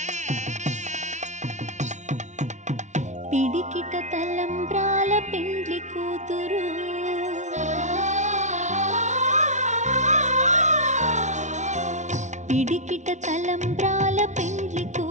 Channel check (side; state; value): left; late; 0.34 ms